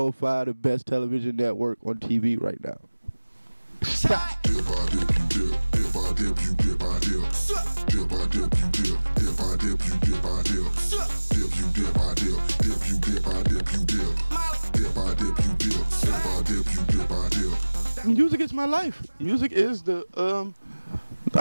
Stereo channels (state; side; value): inverted; both; correlation -1.00